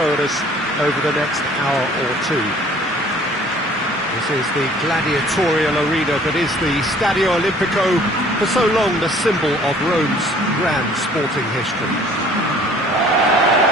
at us over the next hour or two. This is the gladiatorial arena that is the Stadio Olimpico, for so long the symbol of Rome's grand sporting history.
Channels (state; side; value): normal; both; correlation 0.54